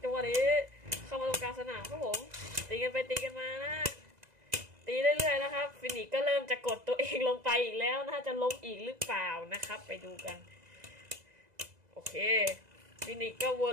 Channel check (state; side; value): late; left; 2.0 ms